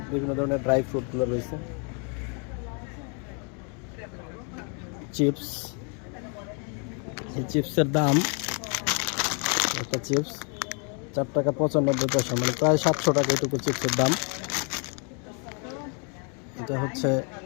বিভিন্ন ধরনের ড্রাই ফ্রুটগুলো রয়েছে, চিপস। এই চিপসের দাম, একটা চিপস 4 টাকা 95 পয়সা, মানে প্রায় 700 টাকা এটুকু চিপসের দাম। এটা হচ্ছে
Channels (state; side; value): quieter; right; 38.4 dB